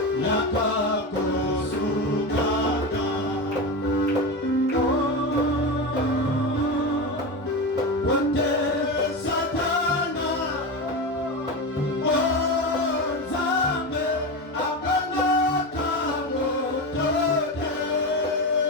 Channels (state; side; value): normal; both; correlation 0.20